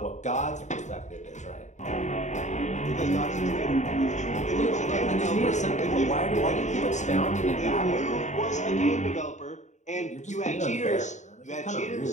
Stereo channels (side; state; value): right; late; 0.34 ms